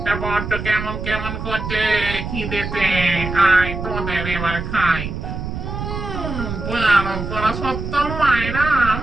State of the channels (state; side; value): noise; right; rumble, 6 dB below the sound